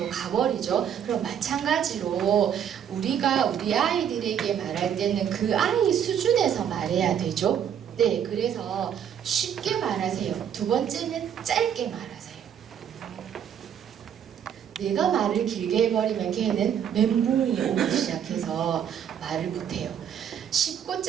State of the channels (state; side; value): quieter; left; 8.8 dB